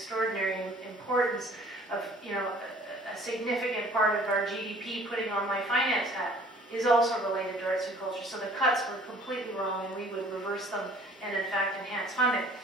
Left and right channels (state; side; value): normal; both; correlation 0.53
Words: importance of, a significant part of our GDP. Putting on my finance hat is also related to arts and culture. So the cuts were completely wrong, and we would reverse them and in fact enhance funding.